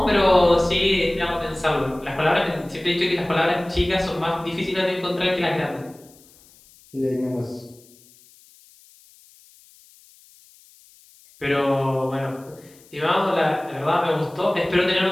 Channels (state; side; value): noise; left; hiss, 27 dB below the sound